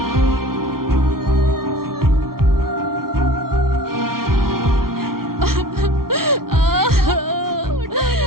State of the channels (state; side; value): late; left; 0.93 ms